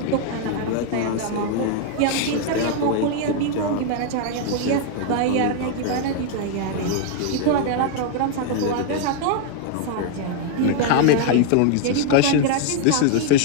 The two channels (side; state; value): both; different; correlation 0.00